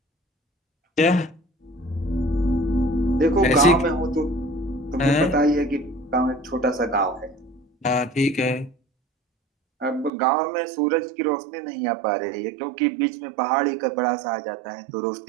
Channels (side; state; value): left; drops out; at 10.1 s